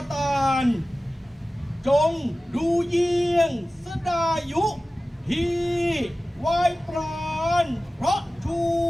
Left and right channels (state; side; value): normal; both; correlation 0.96